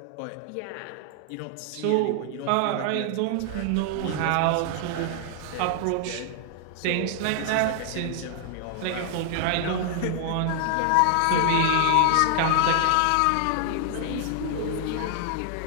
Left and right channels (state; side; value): different; both; correlation 0.00